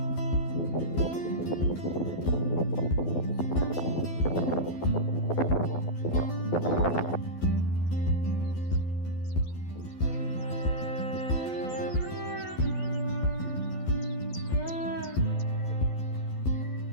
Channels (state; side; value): late; right; 12 ms